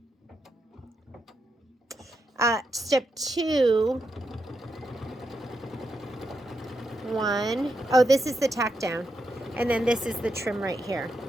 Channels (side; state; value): both; normal; correlation 0.84